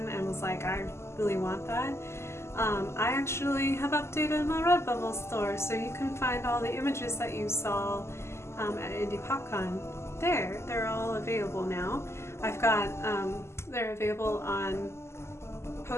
and was like, I really want that. I actually have updated my Redbubble store, so you can find all the images that you saw at Indie PopCon there. They're all available now. I've got, they're available on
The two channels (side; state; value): right; late; 0.13 ms